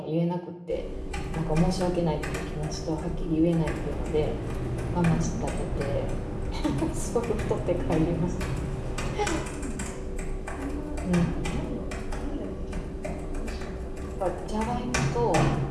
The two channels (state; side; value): identical; both; correlation 1.00